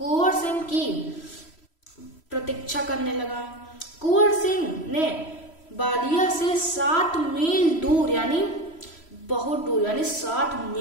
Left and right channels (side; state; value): right; late; 3.0 ms